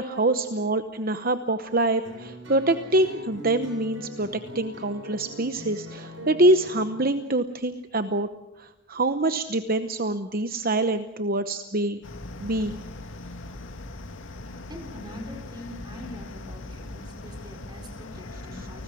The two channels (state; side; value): normal; both; correlation 0.17